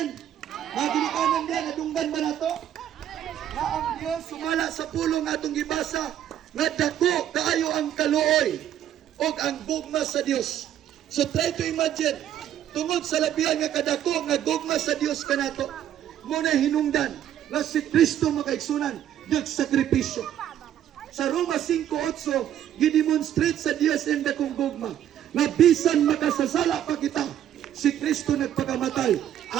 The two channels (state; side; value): quieter; left; 10.8 dB